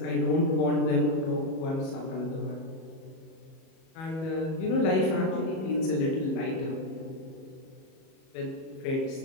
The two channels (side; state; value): right; late; 37 ms